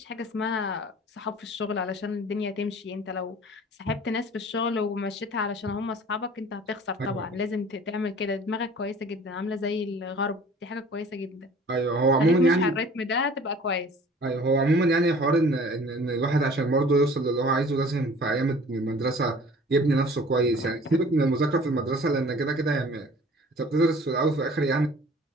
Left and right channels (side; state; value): both; normal; correlation 0.48